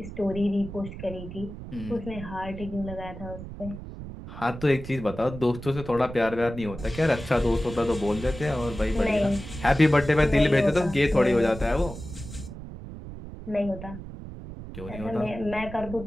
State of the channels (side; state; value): right; noise; rumble, 11 dB below the sound